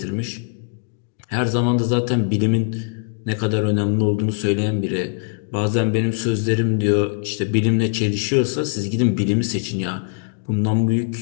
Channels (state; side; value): silent; right; digital silence